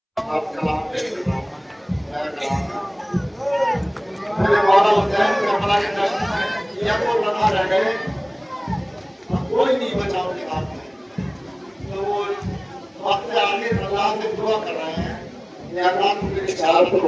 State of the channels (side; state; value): both; identical; correlation 1.00